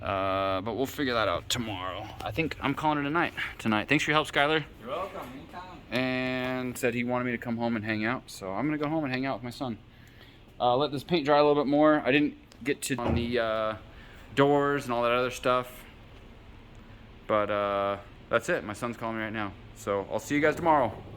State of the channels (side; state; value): both; identical; correlation 1.00